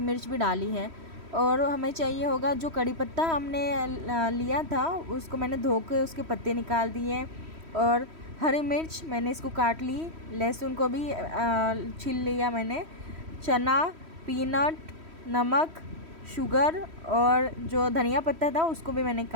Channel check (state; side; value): late; left; 3.1 ms